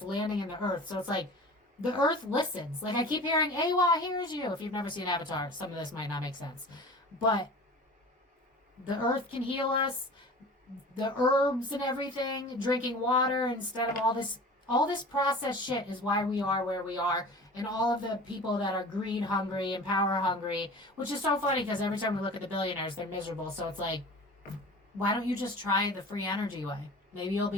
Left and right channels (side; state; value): both; normal; correlation 0.39